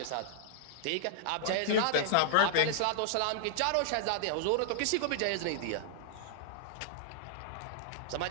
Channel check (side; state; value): both; different; correlation -0.01